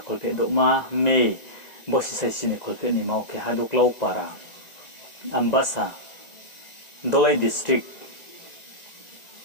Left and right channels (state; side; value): late; right; 1.9 ms